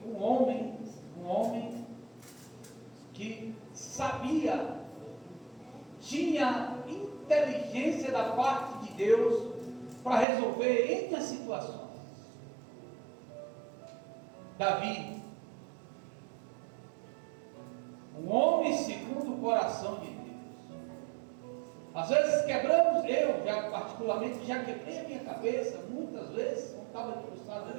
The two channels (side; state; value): left; drops out; at 10.2 s